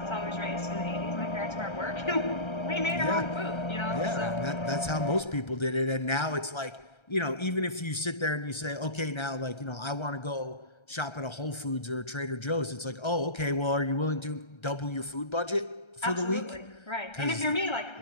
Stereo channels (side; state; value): right; late; 1.3 ms